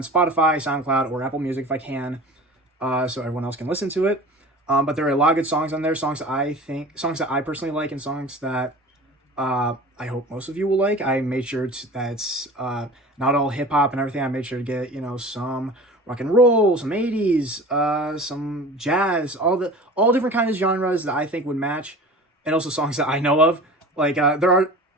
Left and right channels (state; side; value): normal; both; correlation 0.39